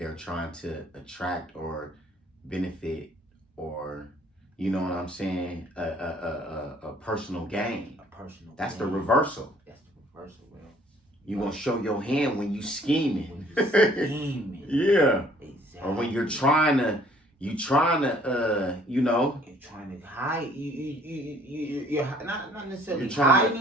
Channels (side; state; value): both; normal; correlation 0.58